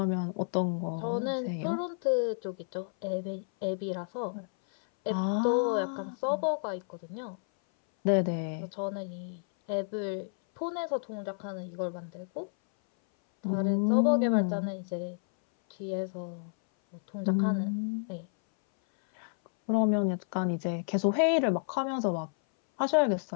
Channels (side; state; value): right; silent; 57 dB below the other